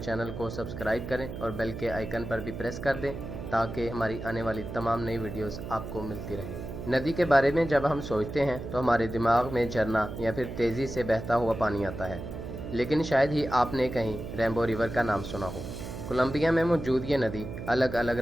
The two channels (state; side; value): noise; right; hum, 8 dB below the sound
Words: को सब्सक्राइब करें और बेल के आइकन पर भी प्रेस कर दें ताकि हमारी आने वाली तमाम नई वीडियोस आपको मिलती रहे। नदी के बारे में जब हम सोचते हैं तो हमारे दिमाग में झरना या फिर तेज़ी से बहता हुआ पानी आता है, लेकिन शायद ही आपने कहीं रेनबो रिवर का नाम सुना हो। कोलंबिया में मौजूद ये नदी अलग अलग